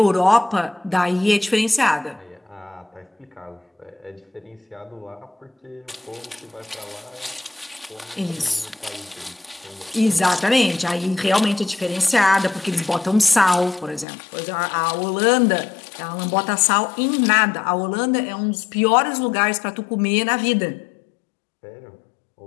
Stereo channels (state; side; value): drops out; right; at 14.1 s